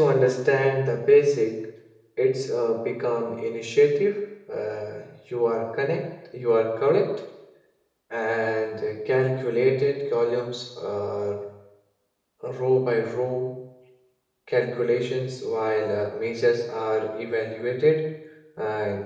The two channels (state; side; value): identical; both; correlation 1.00